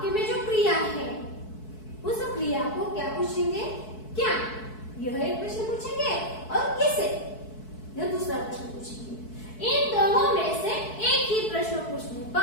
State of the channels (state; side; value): late; right; 4.6 ms